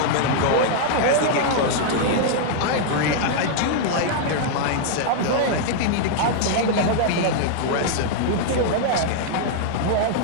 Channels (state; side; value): different; both; correlation -0.01